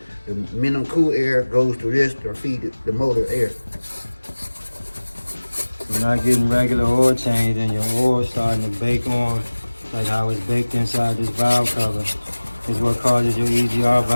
the minimum cool air goes to this to feed the motor air. You're not getting regular oil change, and your oil starting to bake on like how it's baked inside this valve cover is what causes your EGR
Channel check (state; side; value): inverted; both; correlation -1.00